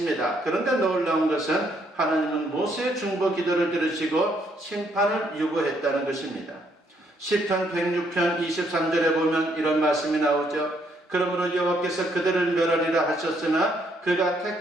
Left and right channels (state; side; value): normal; both; correlation 0.71